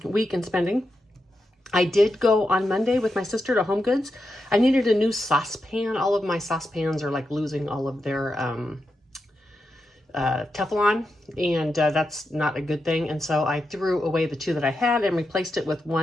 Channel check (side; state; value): both; normal; correlation 0.87